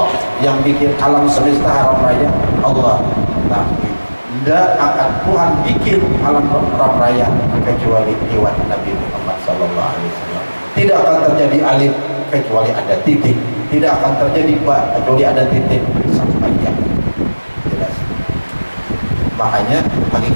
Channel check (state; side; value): inverted; both; correlation -1.00